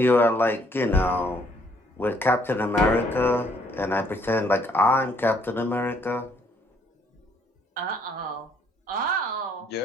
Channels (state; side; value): normal; both; correlation 0.66